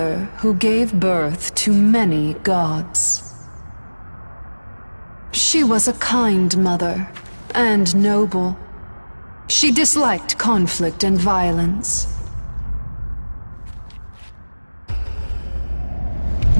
who gave birth to many gods. She was a kind mother, and noble. She disliked conflict and violence.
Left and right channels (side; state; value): both; inverted; correlation -1.00